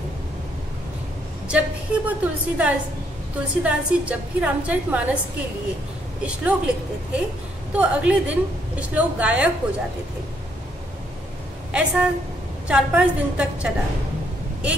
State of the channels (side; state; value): both; normal; correlation 0.71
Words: जब भी वो तुलसीदास जी जब भी रामचरितमानस के लिए श्लोक लिखते थे तो अगले दिन श्लोक गायब हो जाते थे। ऐसा 4-5 दिन तक चला।